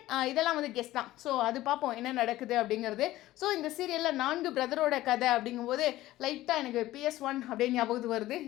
இதெல்லாம் வந்து கெஸ் தான். ஸோ அது பார்ப்போம் என்ன நடக்குது அப்படிங்கிறது. ஸோ இந்த சீரியலில் 4 பிரதரோட கதை அப்படிங்கும்போது லைட்டாக எனக்கு PS1 அப்படின்னு ஞாபகத்துக்கு வருது.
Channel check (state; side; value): quieter; right; 16.0 dB